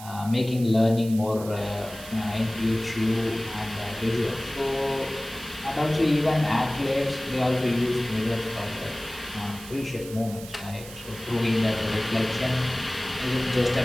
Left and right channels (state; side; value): noise; right; hiss, 15 dB below the sound